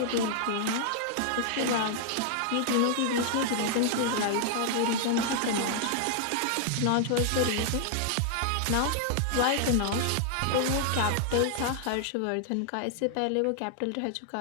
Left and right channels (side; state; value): both; different; correlation 0.00